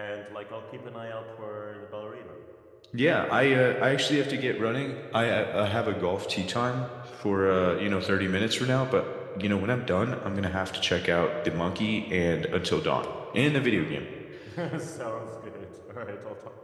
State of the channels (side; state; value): both; identical; correlation 1.00